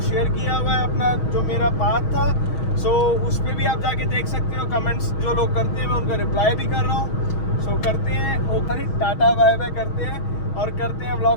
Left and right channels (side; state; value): right; late; 6.3 ms